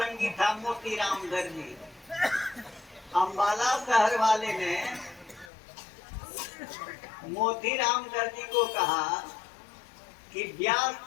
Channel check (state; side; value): drops out; right; at 5.5 s